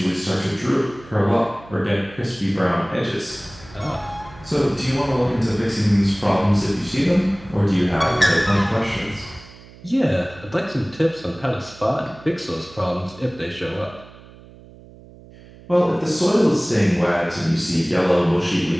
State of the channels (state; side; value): noise; right; hum, 21 dB below the sound